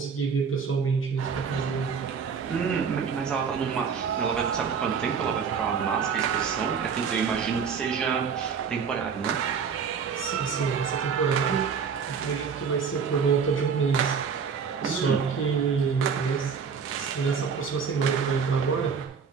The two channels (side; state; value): left; quieter; 6.2 dB